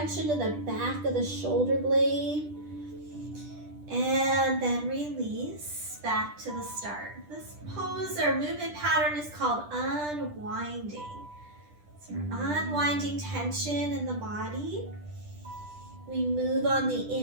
into the back of the shoulder blade. And then release back to the start. This pose or movement pattern is called unwinding. So we're unwinding tension in the body. We move on the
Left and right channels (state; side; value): late; left; 10 ms